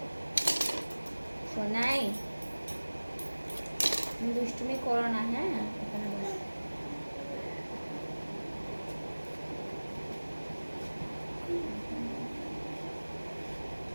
সোনাই দুষ্টুমি করো না, হ্যাঁ? এখানে বসো।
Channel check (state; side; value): inverted; both; correlation -1.00